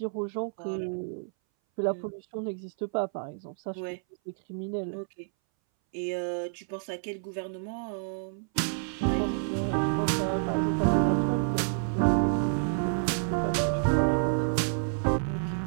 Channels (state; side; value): silent; left; 58 dB below the other